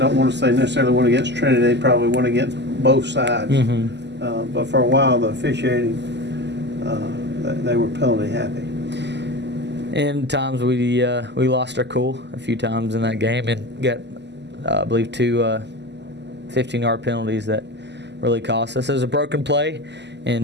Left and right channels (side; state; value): left; late; 0.50 ms